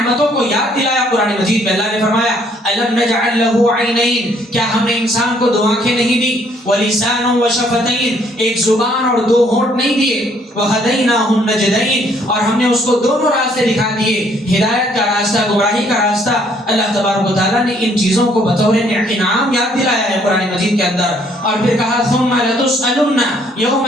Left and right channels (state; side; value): normal; both; correlation 0.65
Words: کو یاد دلایا قرآن مجید میں۔ اللہ نے فرمایا الم نجعل له عینین، کیا ہم نے انسان کو دو آنکھیں نہیں دی، ولسان وشفتین، ایک زبان اور دو ہونٹ نہیں دیے، وہدیناہ النجدین، اور ہم نے اس کو دونوں راستے دکھا دیے، ہدایت کا راستہ، گمراہی کا راستہ۔ اللہ تبارک و تعالیٰ نے ان چیزوں کو بطور انعام یاد دلایا ہے قرآن مجید کے اندر، اور پھر کہا ثم لتسألن